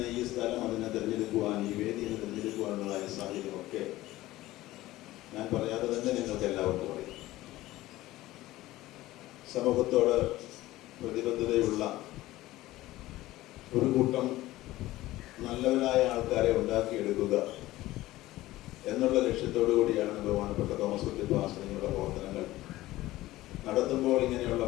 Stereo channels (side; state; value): right; quieter; 16.9 dB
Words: ഈ സ്ഥലം അതിനെ തിരഞ്ഞെടുക്കുവാൻ, ഈ വേദിയെ തിരഞ്ഞെടുക്കുവാനുള്ളതായ സാഹചര്യമൊക്കെ ഞാൻ പറയാതെ തന്നെ നിങ്ങൾക്ക് എല്ലാവർക്കും അറിയാം. സമൂഹത്തോട് പ്രതിബദ്ധതയുള്ള ഒരു കൂട്ടം നല്ലവരായ ആൾക്കാരെ ഉണ്ടാക്കിയെടുക്കുക എന്നുള്ള ലക്ഷ്യത്തോടു കൂടിയാണ് ബഹുമാനപ്പെട്ട തോമസ് കുട്ടി പാസ്റ്ററുടെ പ്രവർത്തനങ്ങൾ നടത്തുമ്പോൾ ഇങ്ങനെയുള്ള